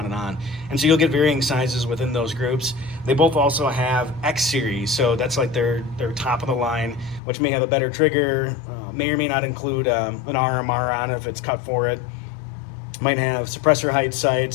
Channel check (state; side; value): drops out; right; at 7.2 s